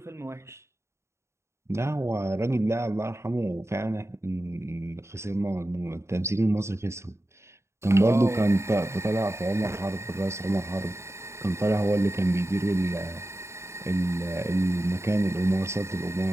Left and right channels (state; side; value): late; left; 0.13 ms